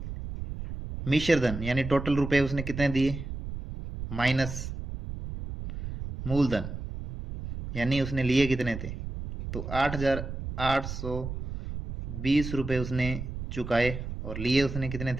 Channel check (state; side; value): noise; right; rumble, 7 dB below the sound